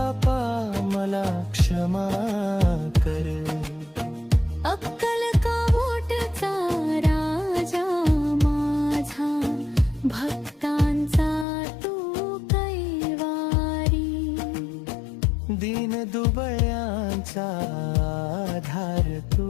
मला क्षमा कर. अक्कल कावोटचा राजा माझा, भक्तांचा तू कैवारी. दीन दुबळ्यांचा आधार तू,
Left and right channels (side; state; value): right; drops out; at 11.5 s